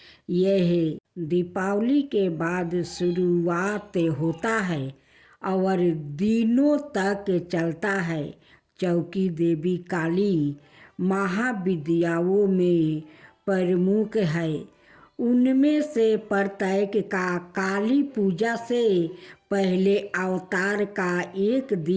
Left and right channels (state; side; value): identical; both; correlation 1.00